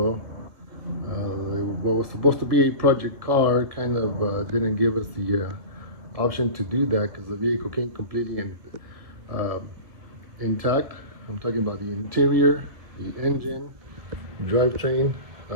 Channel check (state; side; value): late; left; 1.4 ms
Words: What was supposed to be a project car kind of didn't give us the option to do that because the vehicle came completely uh, intact. I'm talking about the interior, the engine, drivetrain,